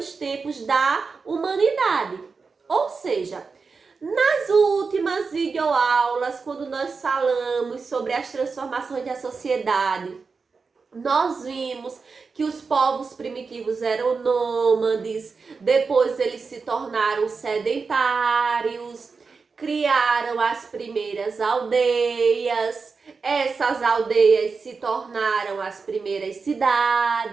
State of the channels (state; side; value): quieter; left; 4.8 dB